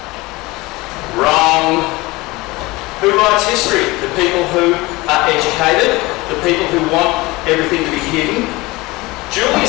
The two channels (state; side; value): quieter; right; 21.7 dB